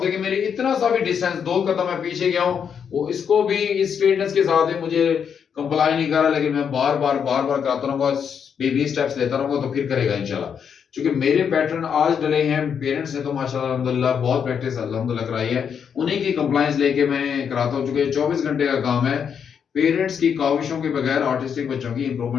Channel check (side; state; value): right; quieter; 7.4 dB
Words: देखिए मेरी इतना सा भी डिस्टेंस 2 कदम मैं पीछे गया हूं, वो इसको भी इस फिटनेस के साथ ही मुझे कंप्लाई नहीं कर रहा, लेकिन मैं बार बार कराता रहूंगा, बेबी स्टेप्स लेता रहूंगा तो फिर करेगा इंशाल्लाह। क्योंकि मेरे पैटर्न आज डले हैं, पेरेंट्स ने तो माशाल्लाह अल्हम्दुलिल्लाह बहुत प्रैक्टिस अल्हम्दुलिल्लाह कराई है, उन्हीं की कंप्लायंस लेके मैं कराता हूं। चूंकि 24 घंटे का काम है, पेरेंट्स की काविशों के बगैर ऑटिस्टिक बच्चों की